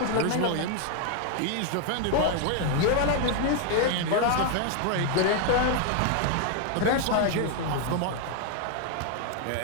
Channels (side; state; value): both; different; correlation 0.00